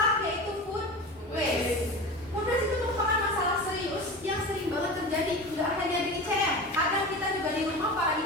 yaitu food waste. Food waste itu merupakan masalah serius yang sering banget terjadi, nggak hanya di ICM. Kadang kita juga di rumah para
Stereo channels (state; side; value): normal; both; correlation 0.30